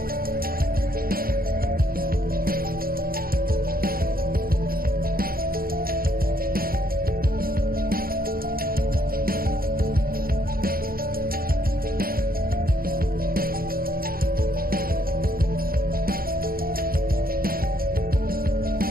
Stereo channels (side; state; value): left; late; 0.43 ms